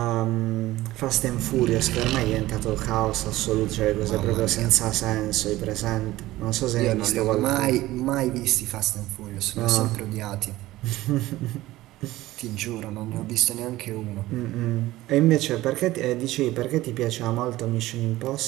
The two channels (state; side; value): quieter; left; 17.0 dB